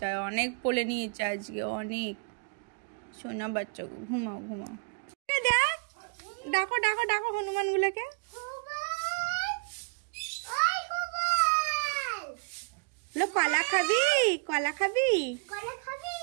অনেক পড়ে নিয়েছে আজকে, অনেক। সোনা বাচ্চা গো, ঘুমাও ঘুমাও। ডাকো ডাকো ডাকো হনুমান গুলোকে। কলা খাবি, কলা খাবি?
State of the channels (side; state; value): left; quieter; 35.3 dB